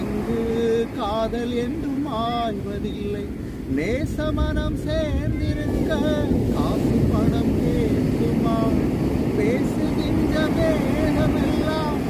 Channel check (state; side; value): identical; both; correlation 1.00